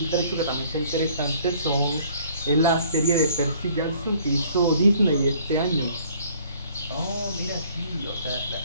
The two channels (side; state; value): both; inverted; correlation -0.58